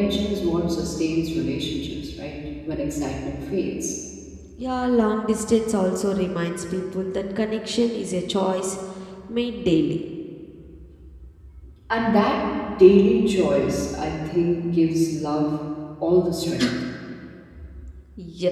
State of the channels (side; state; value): both; identical; correlation 1.00